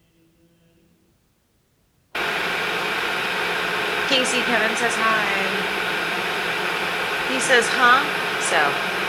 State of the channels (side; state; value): both; identical; correlation 1.00